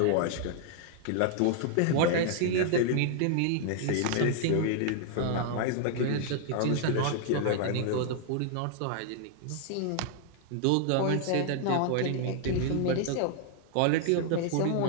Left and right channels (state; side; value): different; both; correlation 0.00